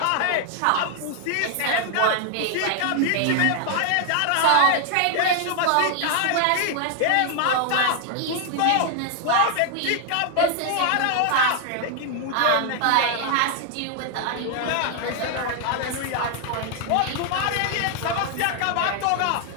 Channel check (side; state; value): both; different; correlation 0.00